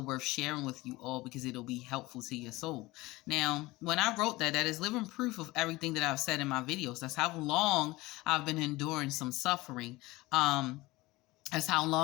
worth sharing with you all because it'll be helpful to your soul. Now, when I wrote that is living proof of everything that I've said in my videos. That's how long I've been enduring some suffering. That's how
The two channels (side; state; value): right; quieter; 20.4 dB